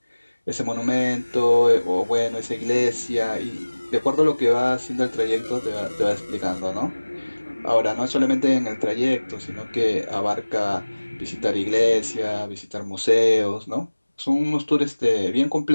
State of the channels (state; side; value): inverted; both; correlation -1.00